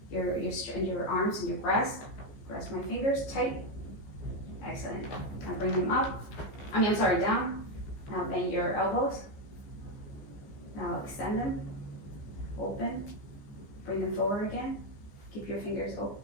arms and your breast. Press my fingers tight. Excellent. Now bring them up. Down. Now bend your elbows. Now extend them, open, bring them forward again. Keep your fingers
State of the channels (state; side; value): late; right; 15 ms